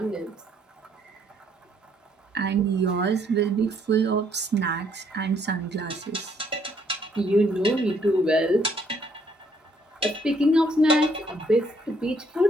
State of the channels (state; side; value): normal; both; correlation 0.68